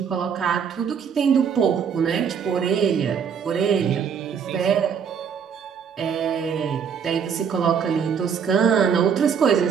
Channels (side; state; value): left; quieter; 7.1 dB